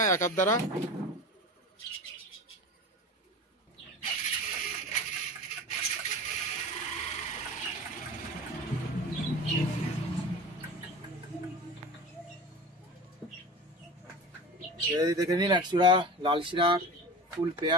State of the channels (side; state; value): both; normal; correlation 0.33